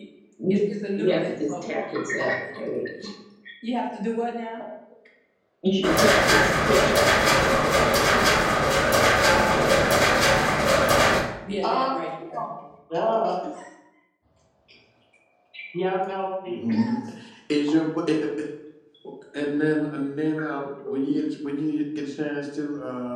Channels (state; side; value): identical; both; correlation 1.00